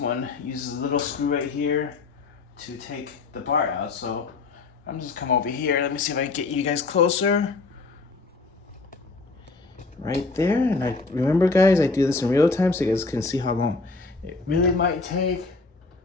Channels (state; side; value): quieter; right; 3.8 dB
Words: uses a little screw right here to take the bar out. So I'm just come over here. Let me see if I can get you guys closer. Right there, and I remember, guys, I do this in real time so you guys can see how long it really might take.